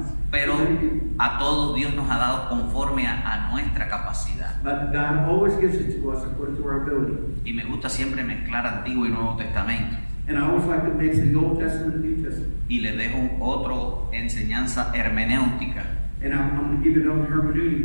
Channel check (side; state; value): both; inverted; correlation -1.00